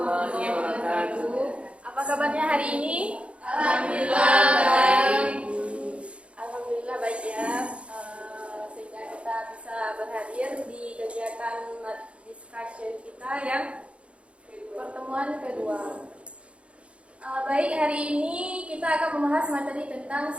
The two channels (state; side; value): late; left; 0.060 ms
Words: wabarakatuh. Apa kabarnya hari ini? Alhamdulillah baik. Alhamdulillah baik ya. Sehingga kita bisa berhadir di kegiatan discussion kita yang pertemuan kedua. Baik, hari ini kita akan membahas materi tentang